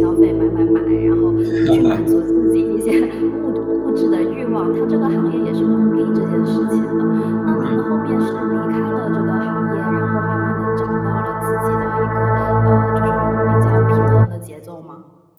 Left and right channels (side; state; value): both; identical; correlation 1.00